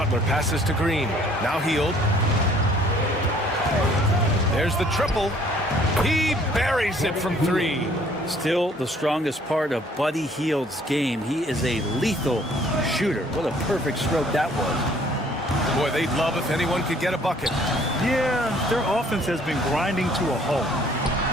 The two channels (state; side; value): normal; both; correlation 0.59